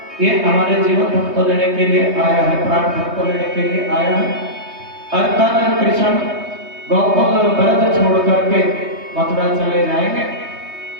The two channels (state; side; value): late; left; 3.2 ms